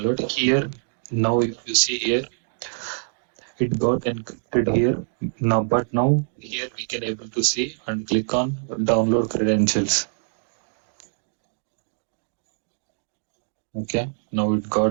here. Now if you see here, it got encrypted here. Now, but now here we can able to see and click on download credentials. Okay, now it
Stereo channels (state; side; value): silent; left; digital silence